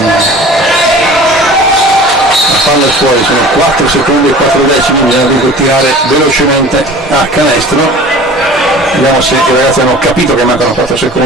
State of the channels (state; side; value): normal; both; correlation 0.42